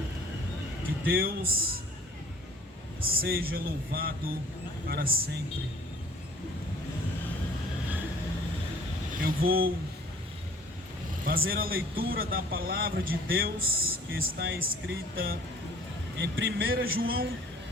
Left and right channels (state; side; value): normal; both; correlation 0.52